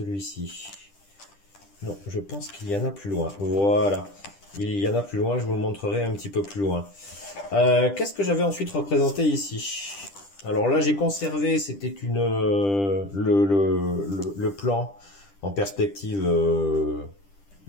Non, je pense qu'il y en a plus loin. Voilà, il y en a plus loin, je vous le montrerai un petit peu plus loin. Qu'est-ce que j'avais ensuite représenté ici? Alors là, j'ai conservé, c'était le plan en perspective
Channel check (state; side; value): late; right; 10 ms